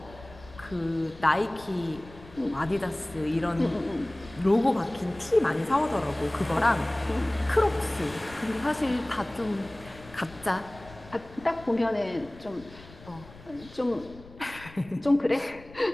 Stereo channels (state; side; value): noise; left; rumble, 20 dB below the sound